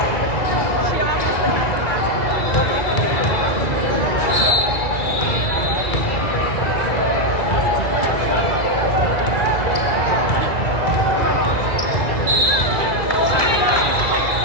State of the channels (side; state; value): right; late; 1.9 ms